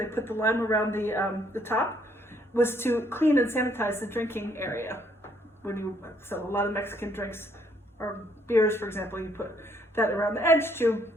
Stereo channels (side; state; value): both; normal; correlation 0.68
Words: put the lime around the top, was to clean and sanitize the drinking area. So a lot of Mexican drinks or beers, for example, you put that around the edge to